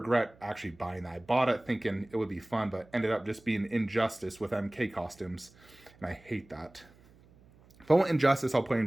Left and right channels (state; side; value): noise; right; hum, 27 dB below the sound